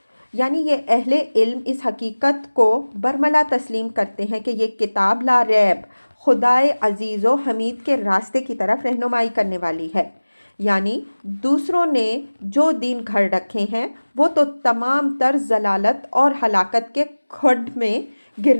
یعنی یہ اہل علم اس حقیقت کو برملا تسلیم کرتے ہیں کہ یہ کتاب لا ریب خدائے عزیز و حمید کے راستے کی طرف رہنمائی کرنے والی ہے، یعنی دوسروں نے جو دین گھڑ رکھے ہیں وہ تو تمام تر ضلالت اور ہلاکت کے کھڈ میں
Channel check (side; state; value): both; inverted; correlation -1.00